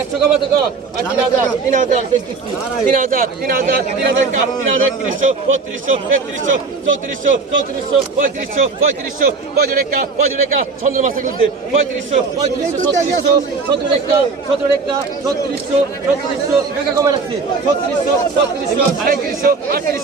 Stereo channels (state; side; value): quieter; left; 4.4 dB